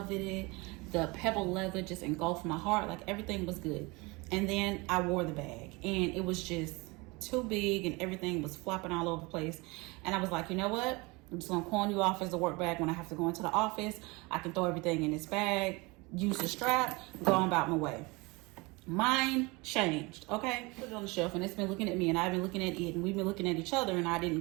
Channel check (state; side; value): quieter; left; 25.4 dB